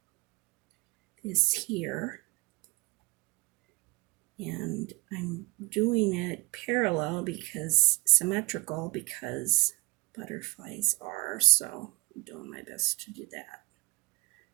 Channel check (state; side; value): quieter; left; 22.3 dB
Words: this here. And I'm doing it parallel because symmetrical because butterflies are, so I'm doing my best to do that.